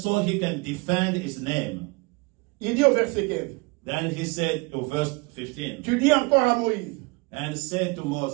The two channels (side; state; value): left; quieter; 27.6 dB